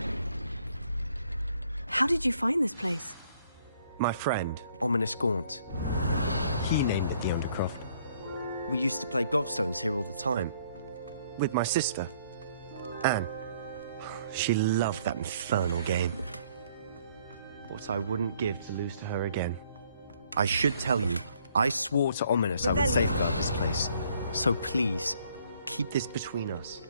How did you find this place? My friend, Ominous Gaunt. He named it the Undercroft. We used to play gobstones here all the time. With my sister, Anne. She loved that infernal game. What I wouldn't give to lose to her again. I should tell you, I swore to Ominous I would safeguard this place. So please, keep this between us.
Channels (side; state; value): both; inverted; correlation -0.64